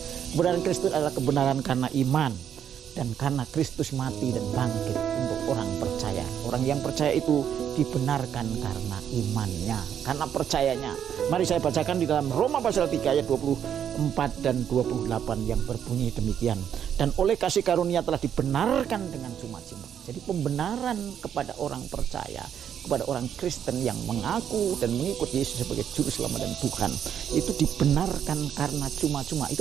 Kebenaran Kristus adalah kebenaran karena iman, dan karena Kristus mati dan bangkit untuk orang percaya. Orang yang percaya itu dibenarkan karena imannya, karena percayanya. Mari saya bacakan di dalam Roma pasal 3 ayat 24 dan 28 yang berbunyi demikian. Dan oleh kasih karunia telah dibenarkan dengan cuma-cuma. Jadi pembenaran kepada orang percaya, kepada orang Kristen yang mengaku dan mengikut Yesus sebagai Juru Selamat dan Tuhan, itu dibenarkan karena cuma-cuma.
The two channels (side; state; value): left; quieter; 8.9 dB